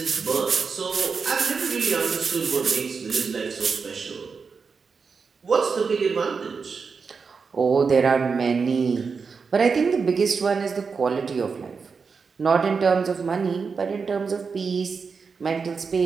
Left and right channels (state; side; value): quieter; left; 5.2 dB